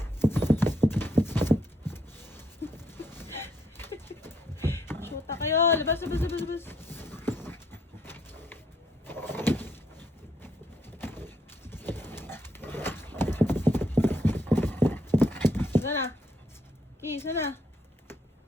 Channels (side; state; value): both; normal; correlation 0.71